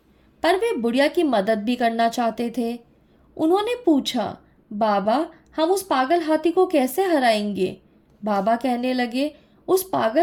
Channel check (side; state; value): both; identical; correlation 1.00